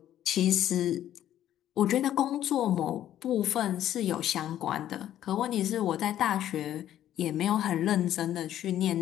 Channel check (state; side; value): quieter; right; 11.8 dB